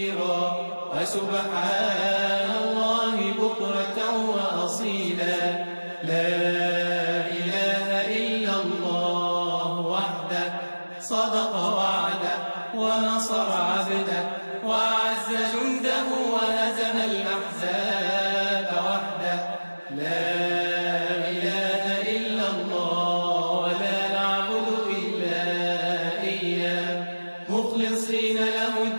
وسبحان الله بكرة وأصيلا. لا إله إلا الله وحده صدق وعده ونصر عبده وأعز جنده وهزم الأحزاب وحده. لا إله إلا الله ولا نعبد إلا إياه مخلصين له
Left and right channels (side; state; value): both; inverted; correlation -1.00